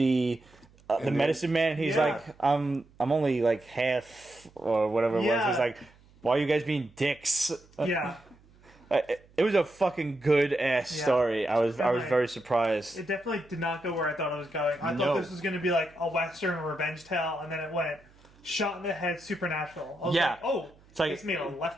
medicine man. He's like, I'm only like half or whatever it was. He's like, why are you guys being dicks? Yeah. It was a fucking good ass story. I was very surprised. It definitely did not go where I thought it was going. I thought this was going to be like a Western revenge tale, and then it went shot in the head, supernatural. I was like, oh, it's made a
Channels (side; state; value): right; noise; hum, 28 dB below the sound